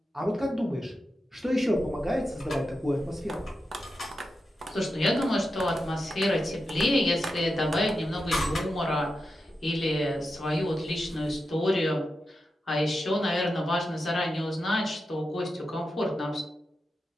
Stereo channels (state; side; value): normal; both; correlation 0.89